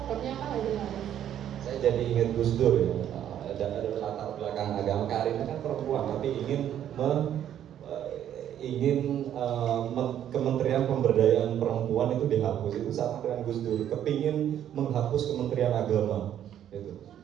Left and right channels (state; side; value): quieter; left; 10.5 dB